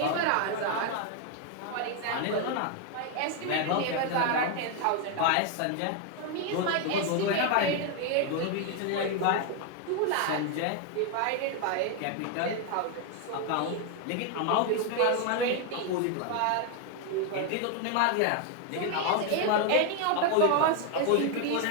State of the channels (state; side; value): different; both; correlation 0.01